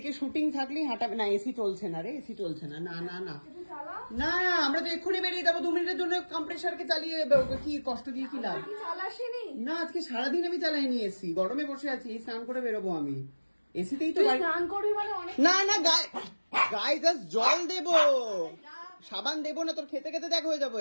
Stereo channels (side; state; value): both; inverted; correlation -1.00